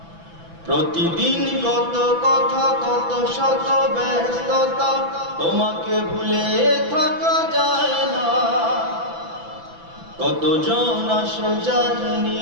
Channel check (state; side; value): late; left; 6.0 ms